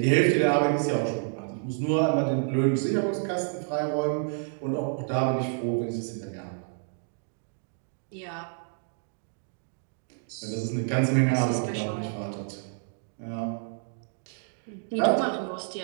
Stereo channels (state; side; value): silent; left; digital silence